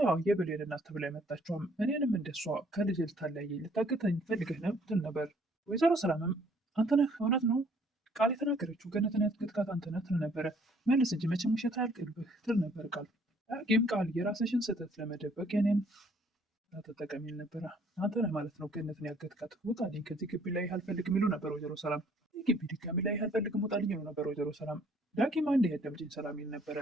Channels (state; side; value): normal; both; correlation 0.61